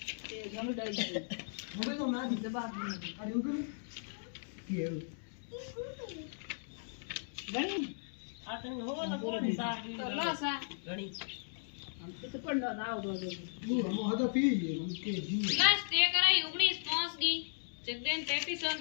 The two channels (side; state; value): right; silent; digital silence